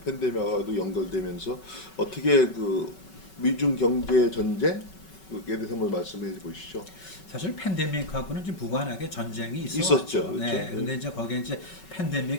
팬데믹하고도 연결되면서 어떻게 그 미중 경제 전쟁에 대해서 한번 말씀해 보시죠. 사실 팬데믹하고는 좀 무관하게 전쟁이 있었죠, 있어왔죠. 그렇죠? 네. 네. 근데 이제 거기에 이제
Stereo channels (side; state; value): right; late; 5.3 ms